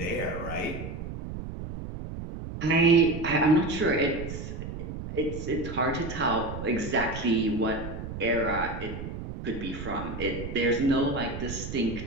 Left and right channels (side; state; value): right; noise; rumble, 8 dB below the sound